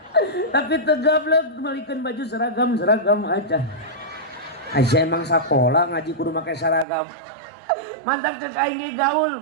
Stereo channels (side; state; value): left; drops out; at 6.9 s